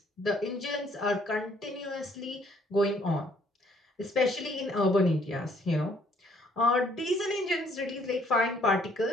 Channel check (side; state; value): both; normal; correlation 0.64